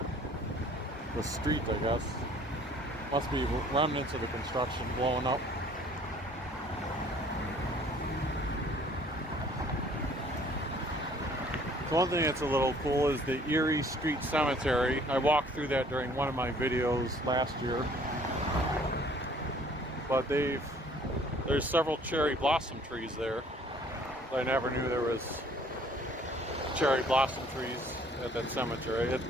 street, I guess. Must be remnants of the construction blowing up. So one thing that's a little cool is the Erie Street Cemetery. I walked through that during one of my videos last year. But there's several cherry blossom trees there. I never knew there was cherry blossom trees at that cemetery. It's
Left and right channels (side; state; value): both; normal; correlation 0.56